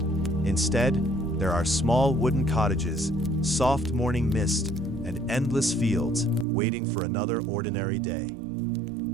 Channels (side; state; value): left; drops out; at 6.5 s